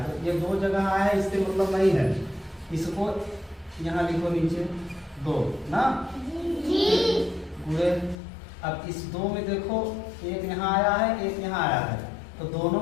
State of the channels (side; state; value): right; drops out; at 8.2 s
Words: तो ये 2 जगह आया है इससे मतलब नहीं है, इसको यहाँ लिखो नीचे 2 ना गुणे। अब इस 2 में देखो एक यहाँ आया है एक यहाँ आया है, तो दोनों